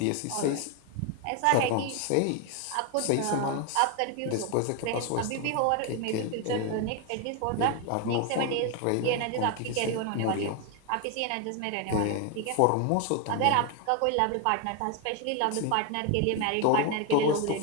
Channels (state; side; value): different; both; correlation 0.01